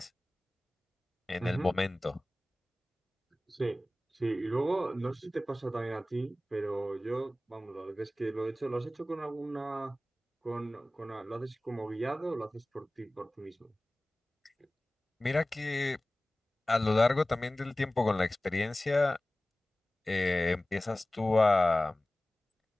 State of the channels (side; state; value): both; normal; correlation 0.97